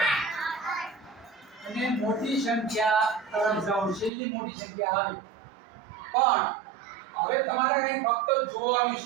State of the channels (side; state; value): left; drops out; at 4.1 s